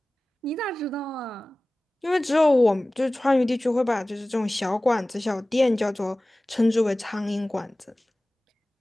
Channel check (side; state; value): both; normal; correlation 0.98